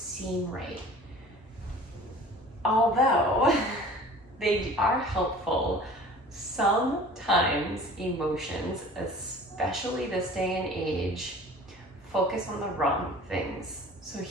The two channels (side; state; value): both; normal; correlation 0.44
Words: right. Although they are helpful, sometimes emotions, especially this day and age, focus on the wrong things. So